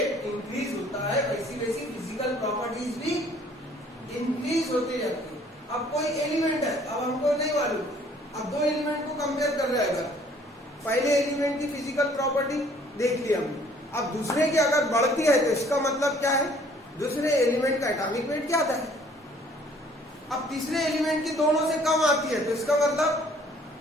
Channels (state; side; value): normal; both; correlation 0.58